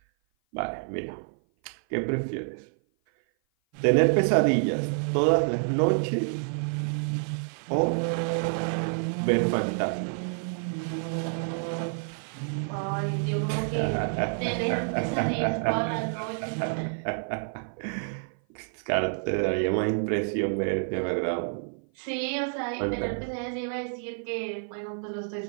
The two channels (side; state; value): left; silent; 55 dB below the other